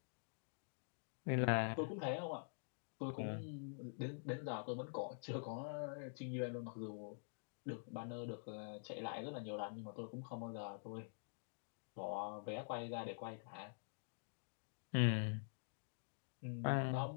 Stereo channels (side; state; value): right; silent; digital silence